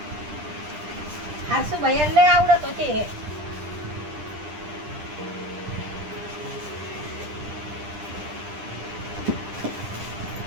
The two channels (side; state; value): left; late; 10 ms